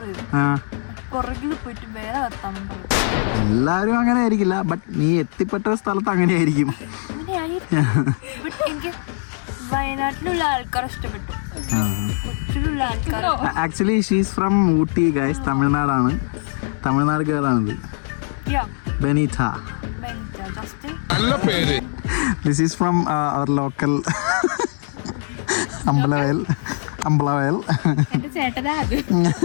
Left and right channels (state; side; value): silent; right; 65 dB below the other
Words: പുറകിൽ പോയിട്ട് വേറെ വർത്താനം പറയും. എല്ലാവരും അങ്ങനെ ആയിരിക്കില്ല, ബട്ട് നീ എത്തിപ്പെട്ട സ്ഥലത്ത് അങ്ങനെ ആയിരിക്കും. എനിക്ക് വയനാട്ടിലുള്ള ആൾക്കാർ ഇഷ്ടപ്പെട്ടു. കൊച്ചിയിലുള്ള ആൾക്കാർ actually she's from Ooty guys. തമിഴ്നാടാണ്, Tamil Nadu ഗേളാണിത്. Benita. நல்ல பேரு. This is from our local Ambalavayal. എന്റെ ചേട്ടനാ അത്.